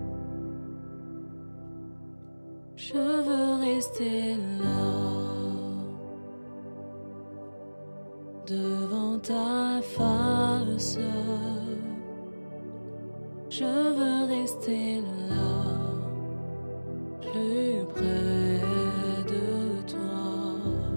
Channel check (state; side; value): inverted; both; correlation -1.00